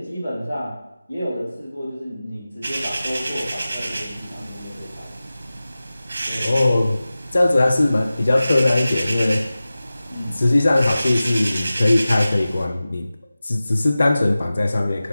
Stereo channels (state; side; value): inverted; both; correlation -0.96